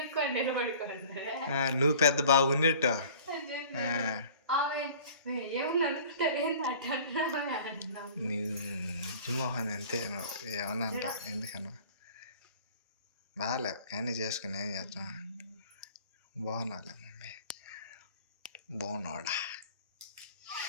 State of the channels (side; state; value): both; inverted; correlation -0.47